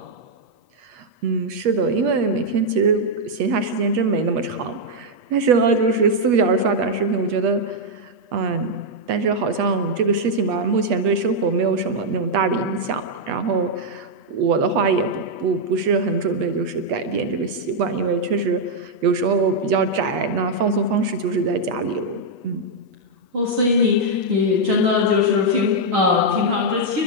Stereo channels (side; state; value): left; late; 8.3 ms